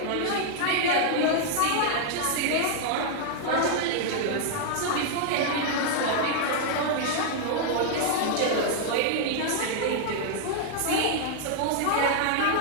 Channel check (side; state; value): both; different; correlation 0.00